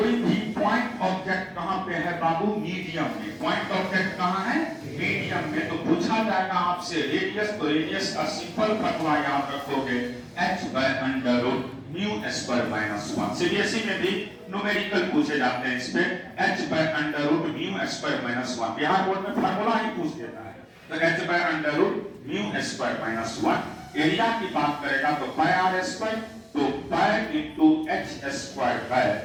भी पॉइंट ऑब्जेक्ट कहां पे है बाबू? मीडियम में। पॉइंट ऑब्जेक्ट कहां है? मीडियम में। तो पूछा जाएगा आपसे रेडियस, तो रेडियस का सिंपल फॉर्मूला याद रखोगे h by under root mu square minus 1। CBSE में भी न्यूमेरिकल पूछे जाते हैं इस पे। h by under root mu square minus 1 Bihar board में फॉर्मूला ही पूछ देता है। तो h by under root mu square minus 1। Area की बात करेगा तो पाई आर स्क्वायर, तो pi into h square by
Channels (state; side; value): identical; both; correlation 1.00